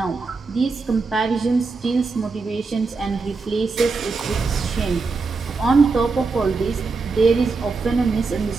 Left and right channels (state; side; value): quieter; left; 4.2 dB